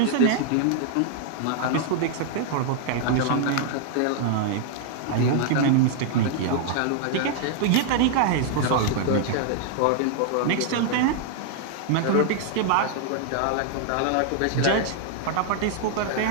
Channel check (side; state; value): both; different; correlation 0.00